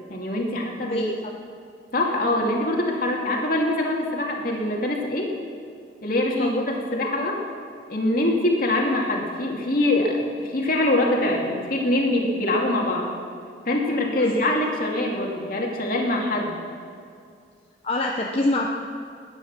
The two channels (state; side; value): normal; both; correlation 0.34